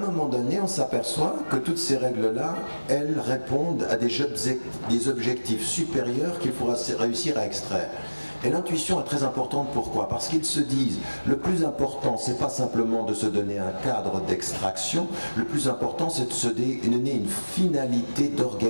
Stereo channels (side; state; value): both; inverted; correlation -1.00